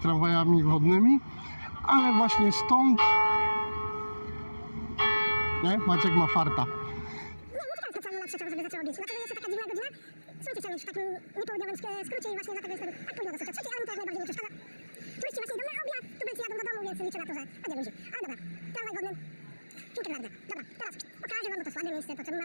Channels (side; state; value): both; inverted; correlation -1.00